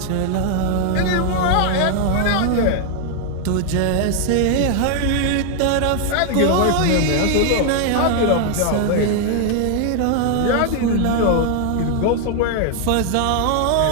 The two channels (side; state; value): both; different; correlation 0.00